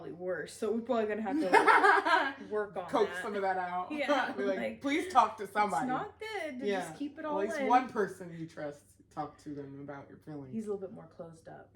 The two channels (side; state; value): both; identical; correlation 1.00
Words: worse. So we're probably gonna have to like, work on coax that. some of that out. Yeah, be like, please talk to somebody. It's not good to just keep it all in. At least one person you trust. Talk to them about your feelings. He's a little bit more closed up.